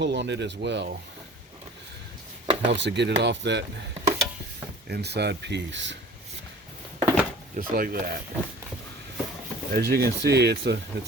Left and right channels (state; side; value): normal; both; correlation 0.45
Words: on it as well. Helps to get it off that inside piece. Just like that. As you can see, it's a